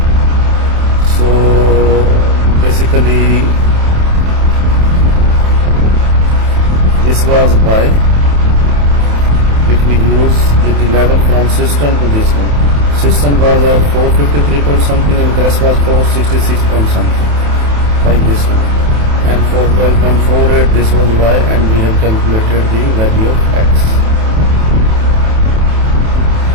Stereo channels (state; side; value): late; left; 27 ms